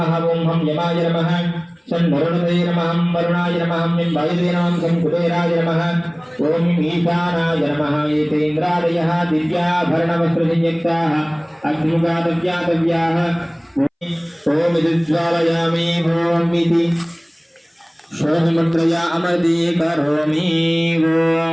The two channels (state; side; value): identical; both; correlation 1.00